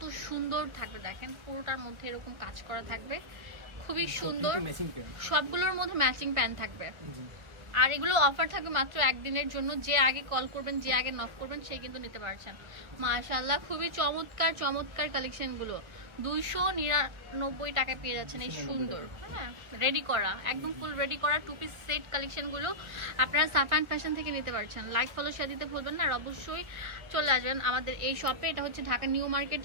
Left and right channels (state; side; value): late; left; 1.0 ms